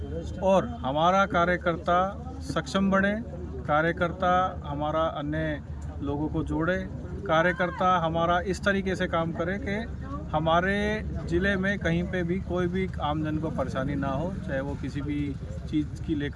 और हमारा कार्यकर्ता सक्षम बने, कार्यकर्ता हमारा अन्य लोगों को जोड़े, कार्यकर्ता हमारा इस तरीके से काम करे कि हमारे ज़िले में कहीं पे भी कोई भी आमजन को परेशानी ना हो, चाहे वो किसी भी चीज़ की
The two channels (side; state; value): both; identical; correlation 1.00